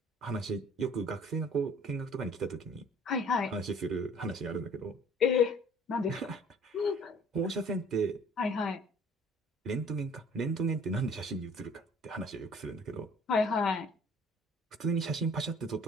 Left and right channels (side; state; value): both; normal; correlation 0.53